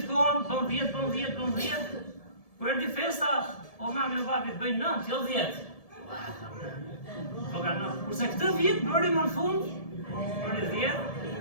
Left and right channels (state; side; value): late; right; 1.7 ms